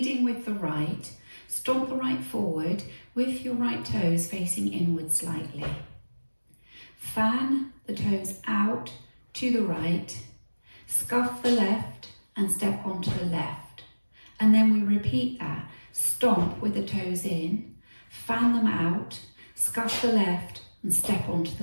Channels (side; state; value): both; inverted; correlation -1.00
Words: with the right, stomp the right forward with your right toes facing inward slightly. Fan the toes out to the right, scuff the left and step onto the left. And then we repeat that. Stomp with the toes in, fan them out, scuff the left and step onto